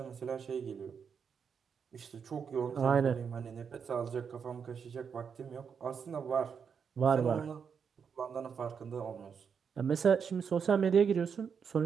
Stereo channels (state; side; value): quieter; left; 6.6 dB